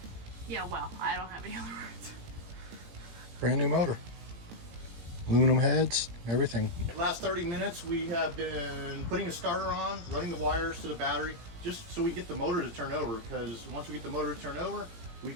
yeah, wow. I don't have any other words. Brand new motor. Aluminum heads, everything. Last 30 minutes we have been putting a starter on, running the wires to the battery, just so we get the motor to turn over, because once we get the motor to turn over, we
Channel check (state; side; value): late; left; 17 ms